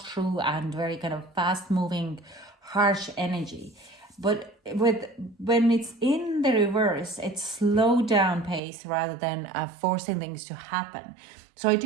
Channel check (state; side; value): drops out; left; at 8.6 s